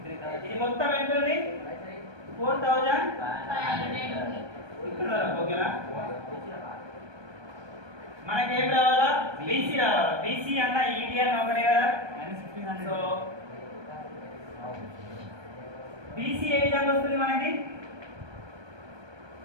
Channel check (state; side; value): late; left; 1.2 ms